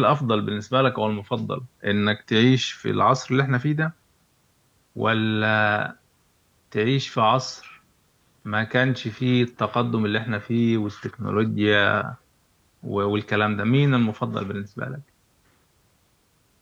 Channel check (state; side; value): identical; both; correlation 1.00